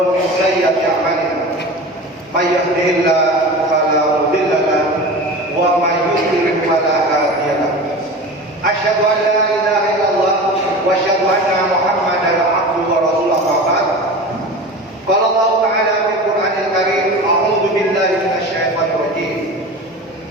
min sayyiati a'malina. May yahdihillahu fala mudilla lahu wa may yudlil fala hadiya lahu. Asyhadu an la ilaha illallah wa asyhadu anna Muhammadan abduhu wa rasuluhu. Qala Allah Ta'ala fil Qur'anil Karim, a'udzu billahi minasy syaithanir rajim.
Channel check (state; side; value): normal; both; correlation 0.32